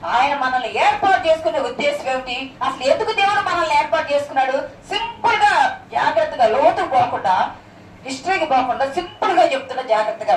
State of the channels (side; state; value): both; identical; correlation 1.00